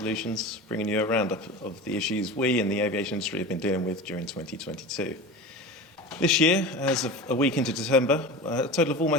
bringing you a roundup of the issues we in the aviation industry have been dealing with during 2022. This year, as of a week into December, a total of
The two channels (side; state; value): both; normal; correlation 0.31